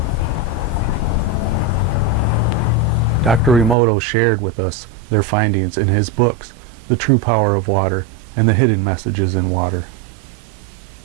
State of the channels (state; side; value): drops out; left; at 3.8 s